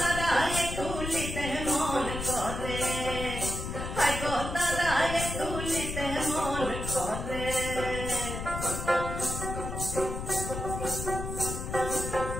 তুলিতে মন করে, হাই গো তারায় তুলিতে মন করে।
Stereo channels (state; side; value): noise; left; rumble, 5 dB below the sound